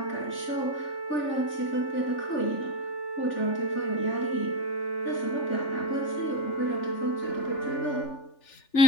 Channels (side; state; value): right; late; 3.4 ms